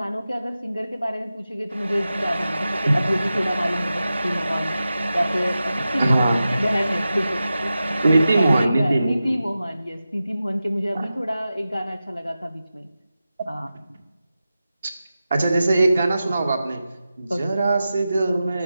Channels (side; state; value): both; inverted; correlation -0.93